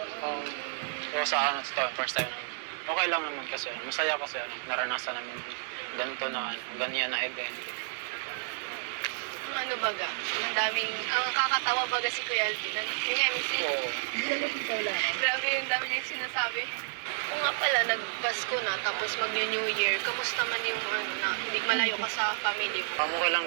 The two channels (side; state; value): left; silent; digital silence